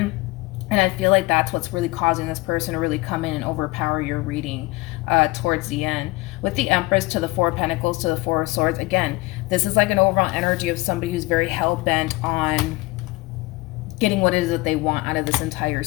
And I feel like that's what's really causing this person to really come in and overpower your reading towards the end. With the Empress to the Four of Pentacles to the Four of Swords, again, this is like an overall energy of somebody who's very hell-bent on getting what it is that they want out of this entire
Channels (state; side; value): quieter; right; 21.8 dB